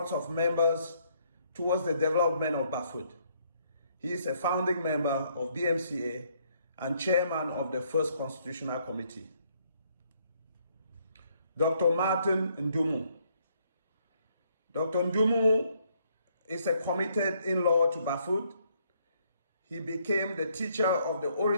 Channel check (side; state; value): both; inverted; correlation -0.69